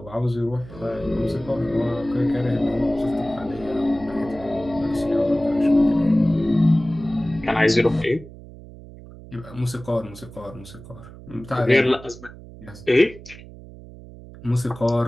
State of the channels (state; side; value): noise; right; hum, 17 dB below the sound